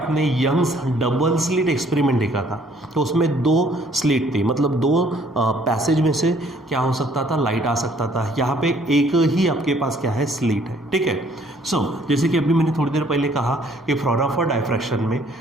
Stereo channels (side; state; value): both; normal; correlation 0.61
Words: यंग्स डबल स्लिट एक्सपेरिमेंट देखा था तो उसमें 2 स्लिट थी, मतलब 2 पैसेज में से क्या हो सकता था, लाइट आ सकता था। यहाँ पे एक ही आपके पास क्या है, स्लिट है, ठीक है। सो जैसे कि अभी मैंने थोड़ी देर पहले कहा कि फ्रॉनोफर डायफ्रैक्शन में